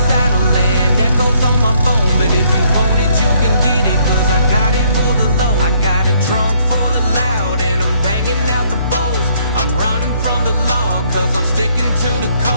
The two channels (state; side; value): inverted; both; correlation -0.67